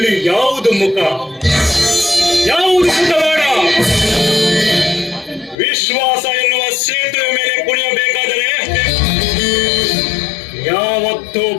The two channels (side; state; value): right; drops out; at 5.6 s